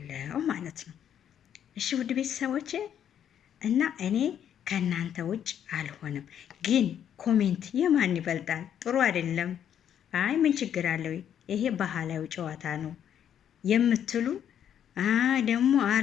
ማለት ነው። እሺ ውድ ቤተሰቦቼ እና እኔ ከእናንተ ውጭ አልሆንም። ግን ኮሜንት የማን ይበልጣል? ጥሩ አይደለም፣ አይ ምን ችግር አለው፣ ይሄ ባህላዊ ጨዋታ ነው የምትሉ ደግሞ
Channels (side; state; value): right; quieter; 9.4 dB